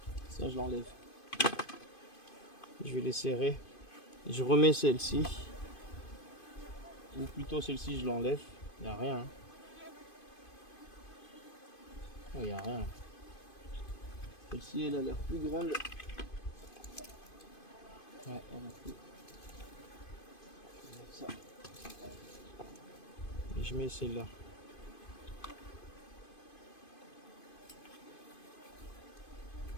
Ça, je l'enlève. Je vais les serrer. Je remets celle-ci. Ou plutôt celle-ci, je l'enlève. Il n'y a rien. Il n'y a rien. Celle-ci, elle a l'air plus grande. Ouais, elle a plus. Ça. Et je mets celle-là.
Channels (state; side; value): late; right; 2.5 ms